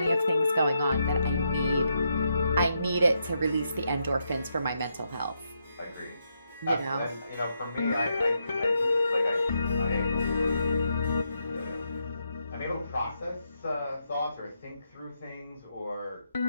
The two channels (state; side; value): inverted; both; correlation -0.81